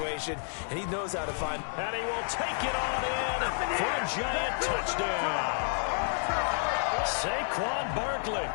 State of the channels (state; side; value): silent; right; 58 dB below the other